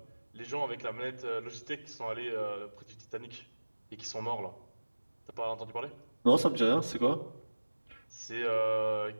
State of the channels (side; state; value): both; inverted; correlation -1.00